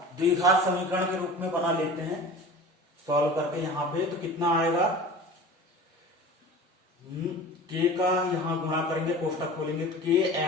द्विघात समीकरण के रूप में बना लेते हैं सॉल्व करके यहाँ पे, तो कितना आएगा के का यहाँ गुणा करेंगे कोष्टक खोलेंगे तो के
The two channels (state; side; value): normal; both; correlation 0.38